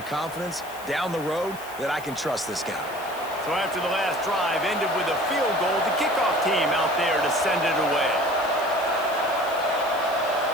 confidence down the road that I can trust this guy. So after the last drive ended with a field goal, the kickoff team out there to send it away.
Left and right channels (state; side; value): noise; left; hiss, 18 dB below the sound